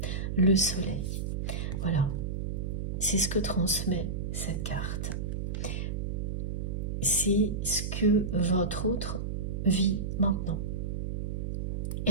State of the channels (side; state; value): right; noise; hum, 2 dB below the sound